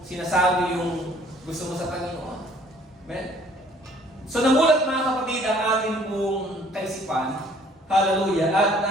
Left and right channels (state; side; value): normal; both; correlation 0.58